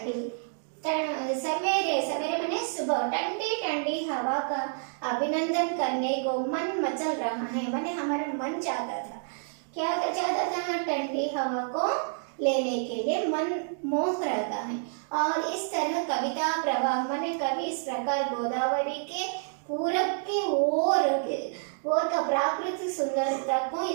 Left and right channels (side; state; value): left; silent; digital silence